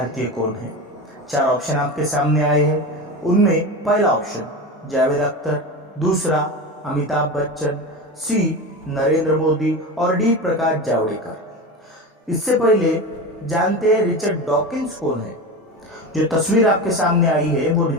कौन हैं? 4 ऑप्शन आपके सामने आए हैं। उनमें पहला ऑप्शन जावेद अख्तर, दूसरा अमिताभ बच्चन, सी नरेंद्र मोदी और डी प्रकाश जावड़ेकर। इससे पहले जानते हैं रिचर्ड डॉकिंस कौन है। जो तस्वीर आपके सामने आई है वो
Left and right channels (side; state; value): both; normal; correlation 0.25